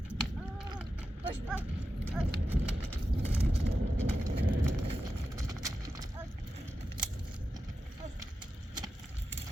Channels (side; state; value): both; normal; correlation 0.91